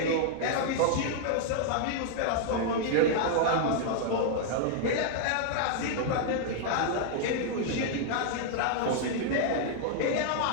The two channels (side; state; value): both; different; correlation -0.01